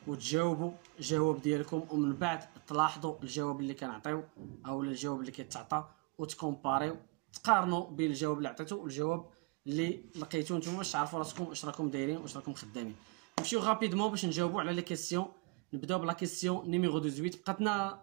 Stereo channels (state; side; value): quieter; left; 29.0 dB